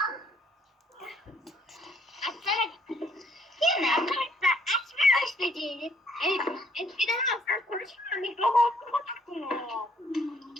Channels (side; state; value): both; normal; correlation 0.65